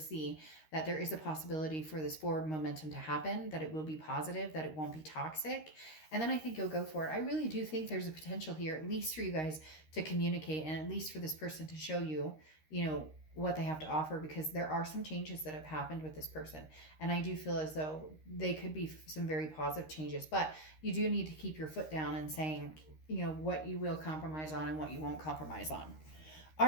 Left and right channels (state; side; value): late; right; 13 ms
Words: that there is a possibility for this forward momentum to happen, that it will be positive, that it won't be toxic. And then I think you'll go for it. I really do think there's a potential here, at least for you guys to communicate, and at least for this person to show you, what they have to offer, because there are some changes that have happened with this person. And I do feel as though they could be some very positive changes, but you do need to keep your foot down and saying, what you will compromise on and what you won't compromise on. All